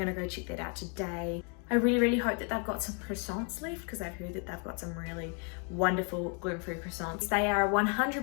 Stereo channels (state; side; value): quieter; right; 38.3 dB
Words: go check that out today. I really hope that they've got some croissants left, because I've heard that they've got some really wonderful gluten-free croissants. They are